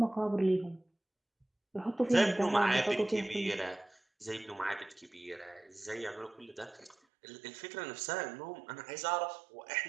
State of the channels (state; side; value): drops out; left; at 7.0 s